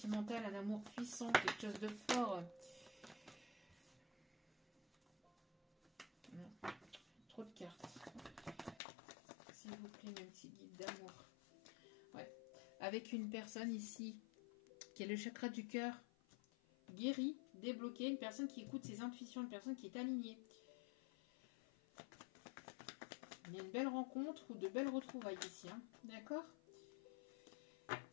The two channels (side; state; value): right; drops out; at 8.8 s